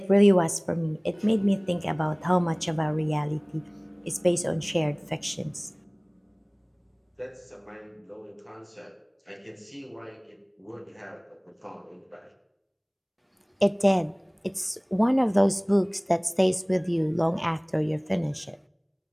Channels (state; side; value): identical; both; correlation 1.00